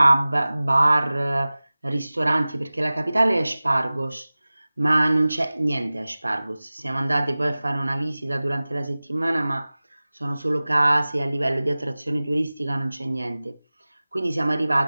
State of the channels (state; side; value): inverted; both; correlation -0.98